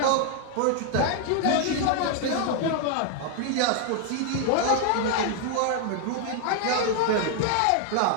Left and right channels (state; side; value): different; both; correlation 0.00